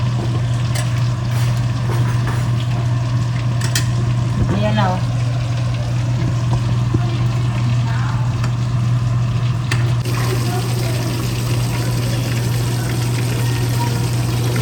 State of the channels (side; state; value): both; identical; correlation 1.00